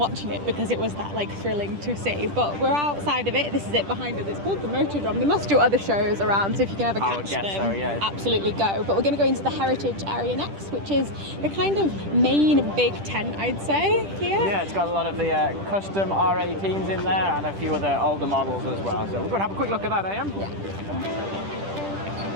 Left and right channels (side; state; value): left; late; 10 ms